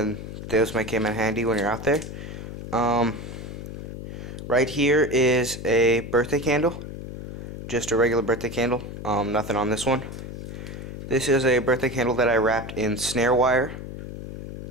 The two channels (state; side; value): noise; left; hum, 9 dB below the sound